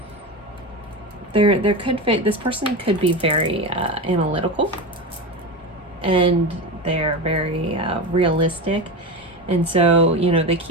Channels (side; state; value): both; normal; correlation 0.22